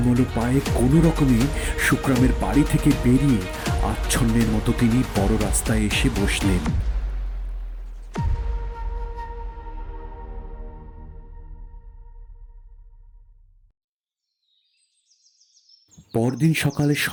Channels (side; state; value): both; identical; correlation 1.00